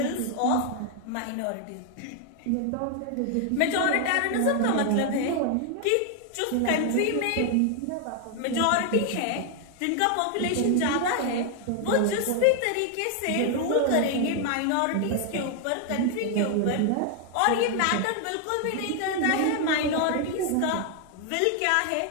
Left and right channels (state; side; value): different; both; correlation 0.00